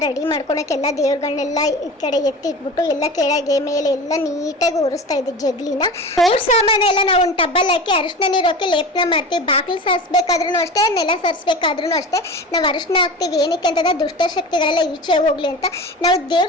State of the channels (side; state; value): both; normal; correlation 0.32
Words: ರೆಡಿ ಮಾಡ್ಕೊಳಕ್ಕೆಲ್ಲ ದೇವ್ರಗಳನ್ನೆಲ್ಲ ಈ ಕಡೆ ಎತ್ತಿಟ್ಬಿಟ್ಟು ಎಲ್ಲ ಕೆಳಗೆ ಮೇಲೆ ಎಲ್ಲ ನೀಟಾಗಿ ಒರೆಸ್ತಾ ಇದ್ದೆ ಜಗ್ಲಿನ. ದೇವ್ರ ಸಾಮಾನೆಲ್ಲ ನಾವು ಒಂದು ಟಬ್ಬಲ್ಲಿ ಹಾಕಿ ಅರಿಶಿನ ನೀರು ಹಾಕಿ ಲೇಪನ ಮಾಡ್ತೀವಿ. ಬಾಗಿಲು ಸಾರಿಸ್ಬೇಕಾದ್ರೂ ಅಷ್ಟೇ, ನೆಲ ಸಾರಿಸ್ಬೇಕಾದ್ರೂ ಅಷ್ಟೇ ನಾವು ಅರಿಶಿನ ಹಾಕ್ತೀವಿ. ಏನಕ್ಕೆ ಅಂತಂದ್ರೆ ದುಷ್ಟಶಕ್ತಿಗಳೆಲ್ಲ ಈಚೆ ಹೋಗ್ಲಿ ಅಂತ. ನಾವು